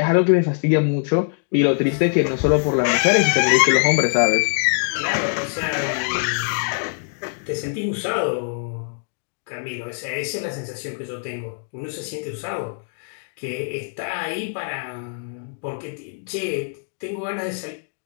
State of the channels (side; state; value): right; silent; digital silence